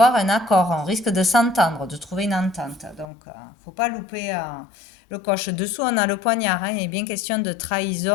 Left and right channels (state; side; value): drops out; right; at 3.1 s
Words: un accord, on risque de s'entendre, de trouver une entente. Donc, il ne faut pas louper le coche. Dessous, on a le poignard, hein. Il est bien question de